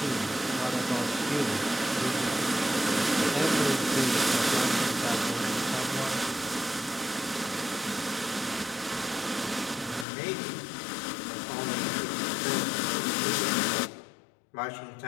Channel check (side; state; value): right; drops out; at 10.1 s